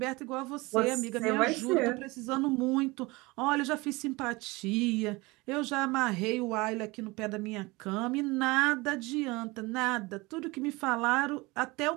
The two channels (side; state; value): left; quieter; 23.4 dB